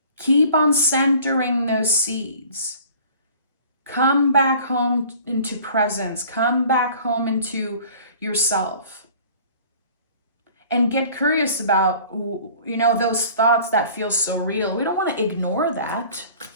Keep on centering those seeds. Come back home into presence. Come back home into yourself. And get curious about, those thoughts that feel so real. We don't want to ignore that.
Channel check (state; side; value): inverted; both; correlation -0.48